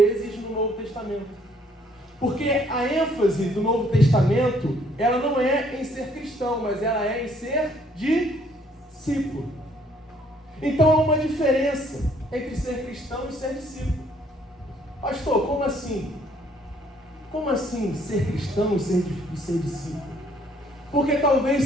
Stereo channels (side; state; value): both; normal; correlation 0.64